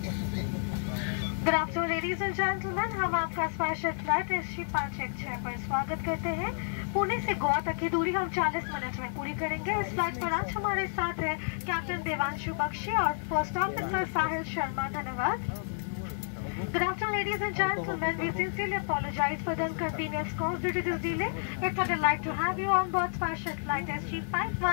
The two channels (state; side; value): silent; right; 57 dB below the other